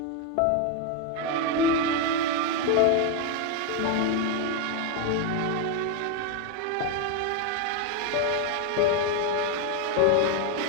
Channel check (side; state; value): both; different; correlation 0.02